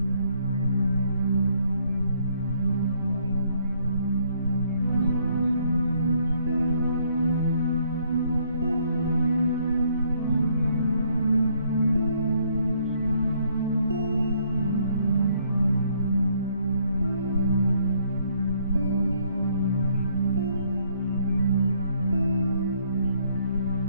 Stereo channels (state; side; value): inverted; both; correlation -0.68